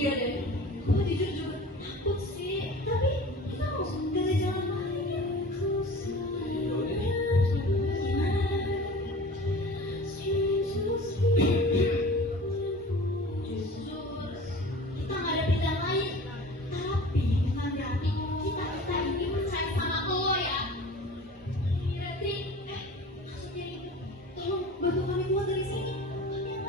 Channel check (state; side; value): normal; both; correlation 0.40